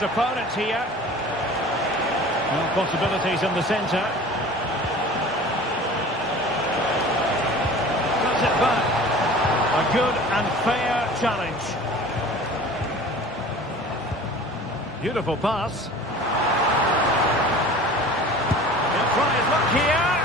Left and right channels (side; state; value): both; normal; correlation 0.42